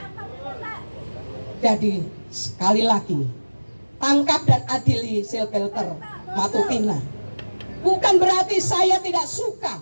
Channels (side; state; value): both; inverted; correlation -1.00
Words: Jadi sekali lagi, tangkap dan adili Silvelter Matutina. Bukan berarti saya tidak suka